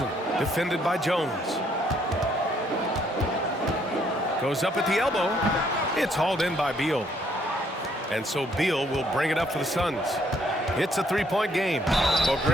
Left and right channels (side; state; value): both; normal; correlation 0.68